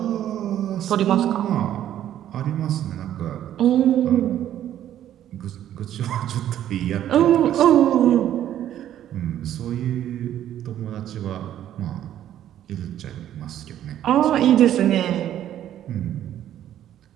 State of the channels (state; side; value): quieter; left; 11.5 dB